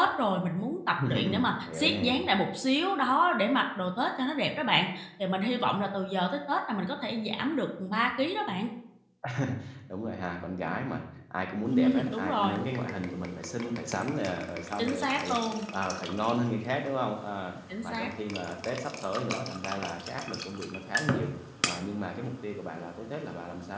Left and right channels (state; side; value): identical; both; correlation 1.00